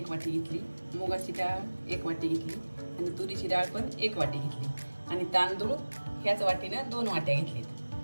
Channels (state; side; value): inverted; both; correlation -1.00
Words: वाटी घेतली, मुगाची डाळ 1 वाटी घेतली आणि तुरीची डाळ पण 1 वाटी घेतली आणि तांदूळ ह्याच वाटीने 2 वाट्या